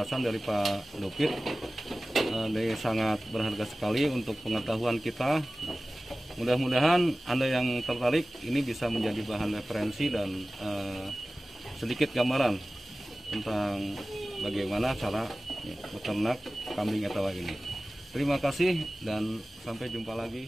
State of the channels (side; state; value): both; normal; correlation 0.97